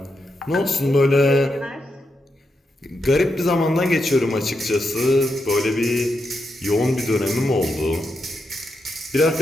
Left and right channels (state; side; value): normal; both; correlation 0.84